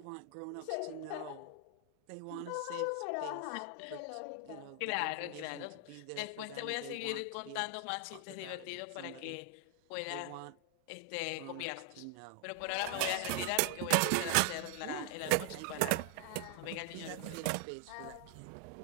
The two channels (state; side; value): different; both; correlation 0.00